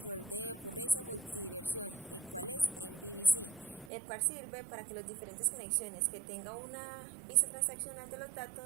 de ocurrencia multidiversión, el cual es en BBC, el cual sirve para que las diferentes conexiones que tenga una vista transaccional de los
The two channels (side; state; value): left; drops out; at 3.9 s